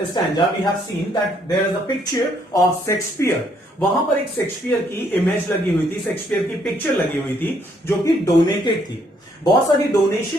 stanza we have seen that there is a picture of Shakespeare. वहां पर एक शेक्सपियर की इमेज लगी हुई थी, शेक्सपियर की पिक्चर लगी हुई थी, जो कि डोनेटेड थी। बहुत सारी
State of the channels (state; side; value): normal; both; correlation 0.69